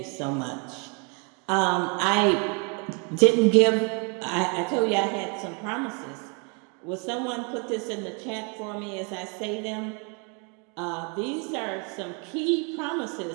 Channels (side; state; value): left; quieter; 35.1 dB